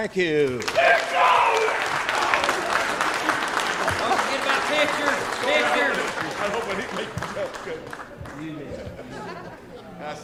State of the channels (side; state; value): both; identical; correlation 1.00